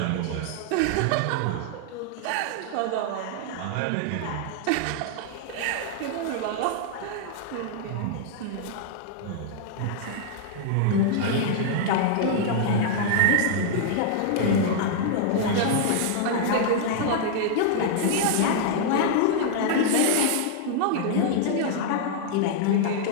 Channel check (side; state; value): both; different; correlation -0.01